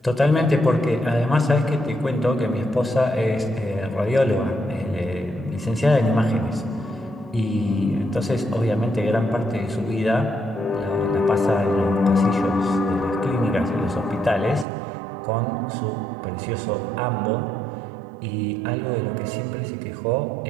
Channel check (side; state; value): left; drops out; at 14.7 s